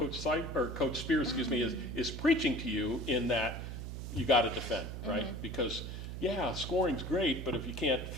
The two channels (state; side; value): noise; right; hum, 7 dB below the sound